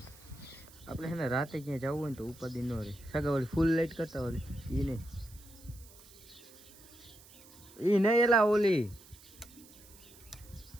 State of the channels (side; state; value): right; noise; hiss, 22 dB below the sound